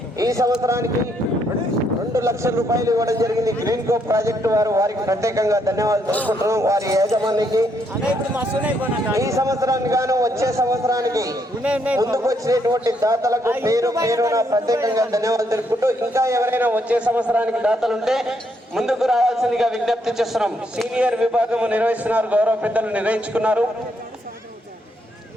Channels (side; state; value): both; normal; correlation 0.74